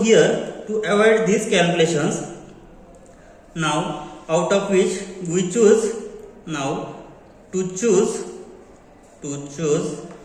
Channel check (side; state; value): both; identical; correlation 1.00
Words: here, to avoid these calculations, now out of which we choose now to choose